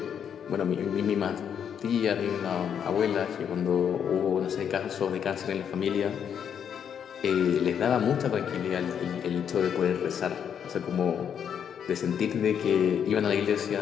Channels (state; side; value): quieter; right; 8.2 dB